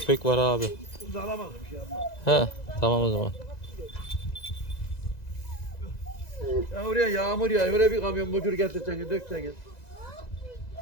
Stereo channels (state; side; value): late; right; 1.9 ms